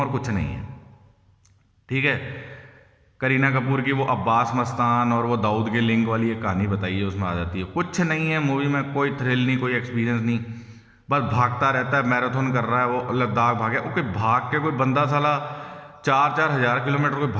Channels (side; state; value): both; identical; correlation 1.00